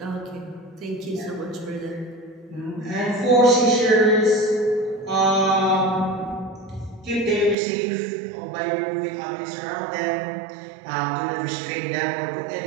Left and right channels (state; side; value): drops out; left; at 7.6 s